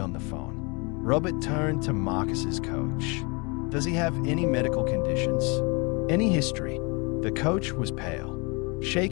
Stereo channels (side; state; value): right; quieter; 30.4 dB